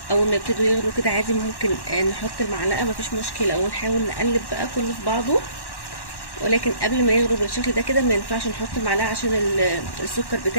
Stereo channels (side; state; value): right; late; 1.1 ms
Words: اول ما يبتدوا يغلوا كده عادي ممكن نحط المعلقه، مفيش مشكله، ونحاول نقلب بقى كله في بعضه. ولكن قبل ما يغلوا بالشكل ده كده ما ينفعش نحط المعلقه عشان السكر